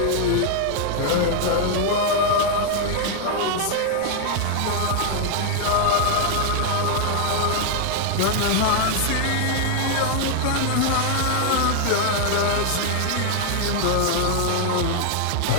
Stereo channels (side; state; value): both; different; correlation 0.00